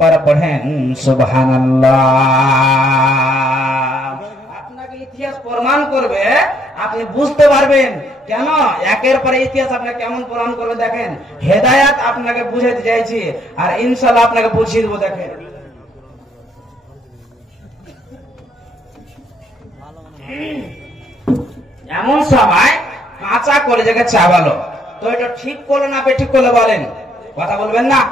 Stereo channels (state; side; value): normal; both; correlation 0.68